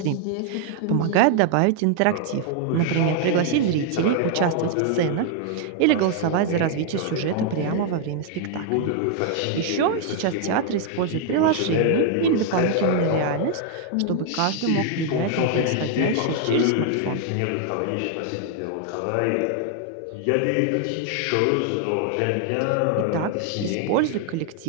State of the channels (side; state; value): both; different; correlation 0.00